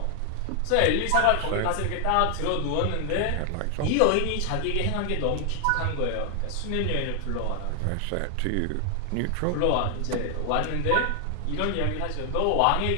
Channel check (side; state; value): both; different; correlation 0.00